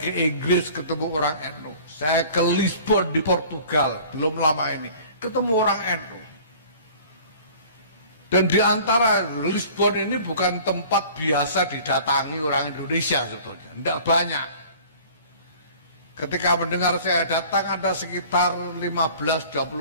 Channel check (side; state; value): both; inverted; correlation -0.47